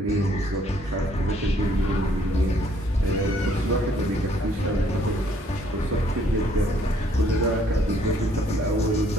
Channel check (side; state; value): both; normal; correlation 0.64